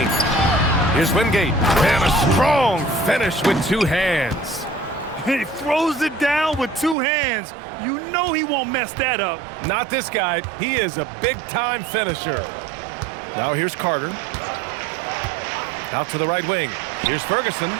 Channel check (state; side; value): drops out; left; at 7.0 s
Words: Here's Wingate. And a strong finish with two hands. He throws it down with two hands. You know he won't mess that up. Not this guy. He is a big-time finisher. Now here's Carter. Out to the right wing. Here's Ferguson.